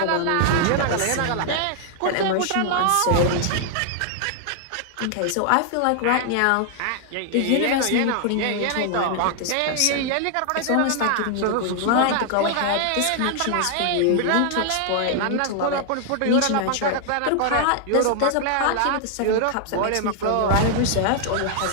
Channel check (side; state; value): both; different; correlation 0.00